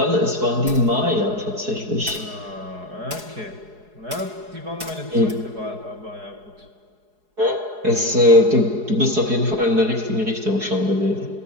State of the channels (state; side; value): late; left; 4.8 ms